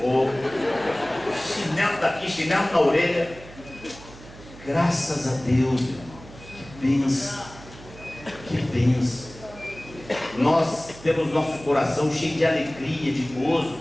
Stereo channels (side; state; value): right; noise; hum, 18 dB below the sound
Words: chinelo daqui, chinelo na orelha. Graças a Deus, irmão. Que bênção, que bênção. Nós temos nosso coração cheio de alegria, de gozo,